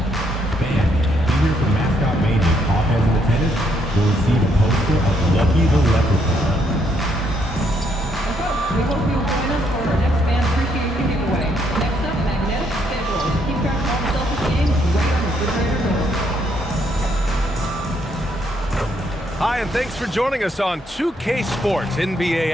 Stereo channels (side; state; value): both; normal; correlation 0.72